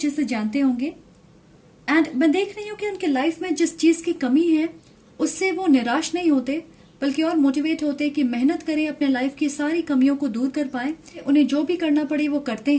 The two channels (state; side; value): identical; both; correlation 1.00